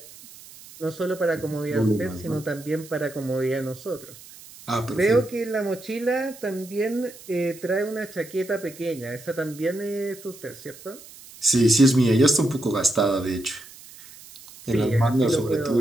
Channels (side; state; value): right; noise; hiss, 19 dB below the sound